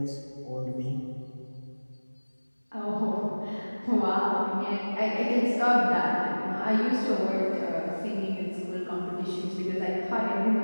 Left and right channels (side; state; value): both; inverted; correlation -1.00